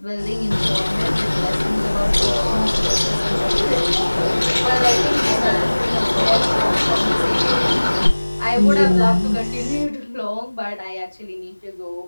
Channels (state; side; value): inverted; both; correlation -1.00